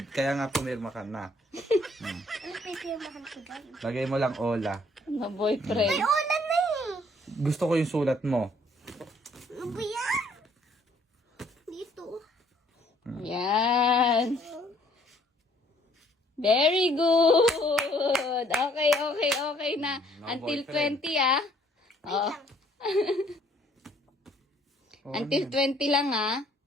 Kaya nga pumirma ka na. Ano pa yung firmahan ko dyan? Lagay mo lang Ola. Na boyfriend. May ulan na eh. Gusto ko yung sulat mo. Ano ba yan? Dito. Yan. Very good. Okay na. No Until boyfriend. 20 ah. Oo. Until 20 lang ah.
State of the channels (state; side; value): normal; both; correlation 0.62